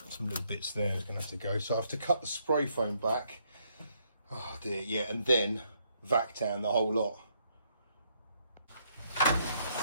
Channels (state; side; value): inverted; both; correlation -0.72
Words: some little bits there is going to have to go. So I have to cut the spray foam back. Oh dear, yeah, and then vac down the whole lot.